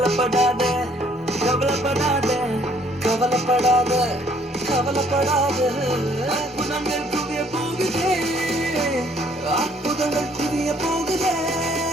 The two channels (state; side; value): normal; both; correlation 0.63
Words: கவலைப்படாத கவலைப்படாத கவலைப்படாத. அற்புதங்கள் குவிய போகுதே, அற்புதங்கள் குவிய போகுதே.